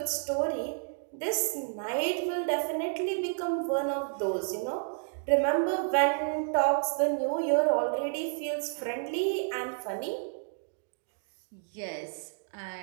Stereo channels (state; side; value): silent; left; digital silence